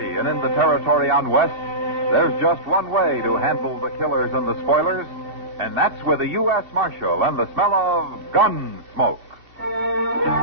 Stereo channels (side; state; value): left; late; 2.7 ms